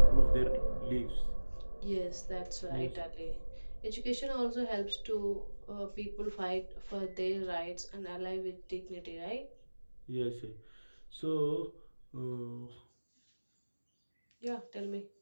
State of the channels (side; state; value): both; inverted; correlation -1.00